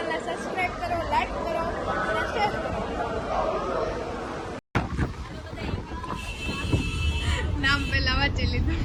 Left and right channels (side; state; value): both; identical; correlation 1.00